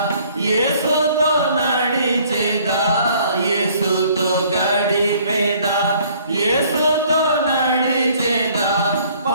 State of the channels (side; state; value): both; inverted; correlation -0.59